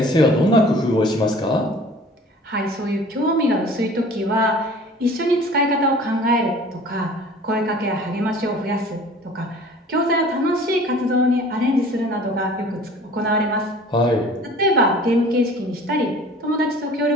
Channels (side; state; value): both; normal; correlation 0.47